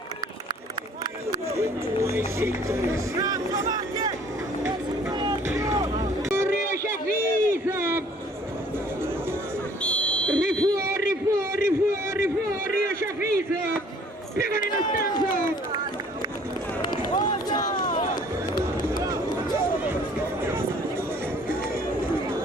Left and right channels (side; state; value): both; normal; correlation 0.56